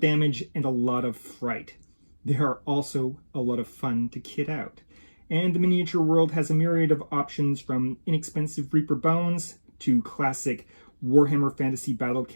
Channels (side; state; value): both; inverted; correlation -1.00